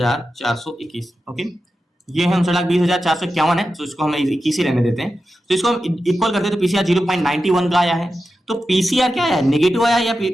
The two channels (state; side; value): normal; both; correlation 0.91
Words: ओके। ये है 59,20,451 है, तो इसको हम 21 ही रहने देते हैं। तो इसको हम इक्वल करते हैं, तो पीसीआर 0.91 का आया है। तो पीसीआर क्या है, नेगेटिव आया या